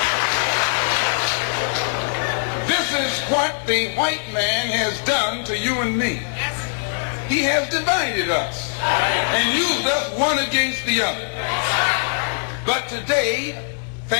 This is what the white man has done to you and me. He has divided us and used us one against the other. But today,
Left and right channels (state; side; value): silent; right; 65 dB below the other